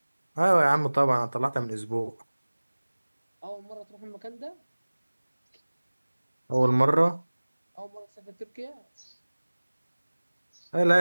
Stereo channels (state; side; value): inverted; both; correlation -1.00